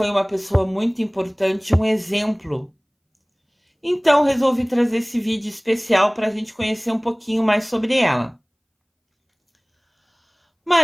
uma pessoa muito importante, um exemplo. Então resolvi trazer esse vídeo especial para a gente conhecer um pouquinho mais sobre ela.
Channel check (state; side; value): identical; both; correlation 1.00